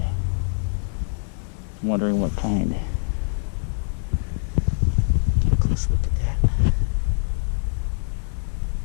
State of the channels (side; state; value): right; silent; digital silence